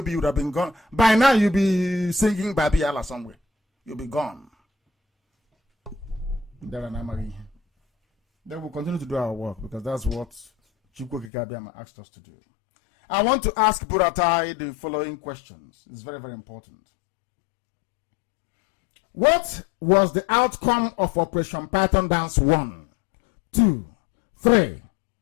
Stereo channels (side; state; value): right; drops out; at 11.3 s